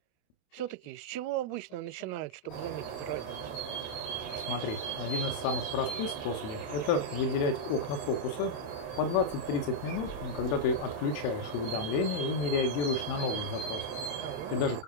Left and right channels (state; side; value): late; right; 27 ms